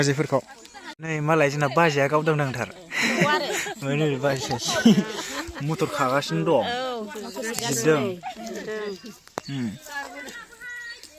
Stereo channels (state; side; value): identical; both; correlation 1.00